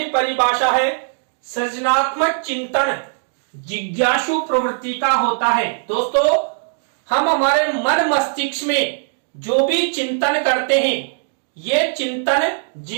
परिभाषा है, सृजनात्मक चिंतन जिज्ञासु प्रवृत्ति का होता है। दोस्तों, हम हमारे मन मस्तिष्क में जो भी चिंतन करते हैं, ये चिंतन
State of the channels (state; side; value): silent; left; digital silence